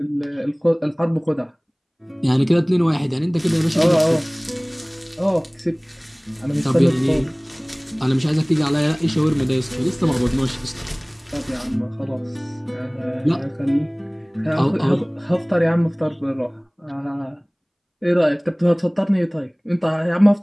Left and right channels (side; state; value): both; identical; correlation 1.00